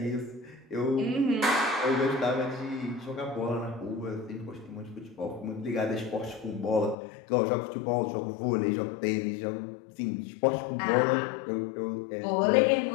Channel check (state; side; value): drops out; right; at 7.0 s